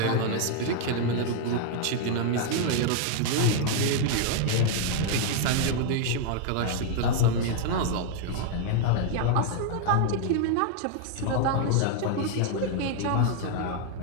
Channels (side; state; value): both; different; correlation 0.00